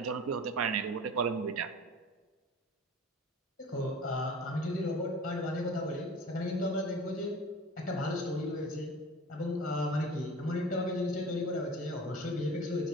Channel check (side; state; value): both; normal; correlation 0.39